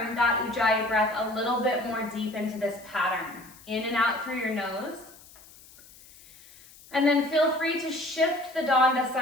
that ujjayi breath a little bit more deep into this pattern. In and out through your nose. And then feel free to shift the danda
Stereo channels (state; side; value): noise; left; hiss, 23 dB below the sound